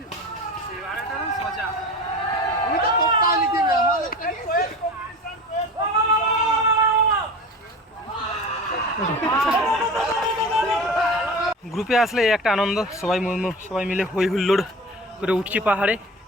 গ্রুপে আসলে এই একটা আনন্দ, সবাই মিলে হই হুল্লোড় করে উঠছি পাহাড়ে।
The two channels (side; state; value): both; normal; correlation 0.34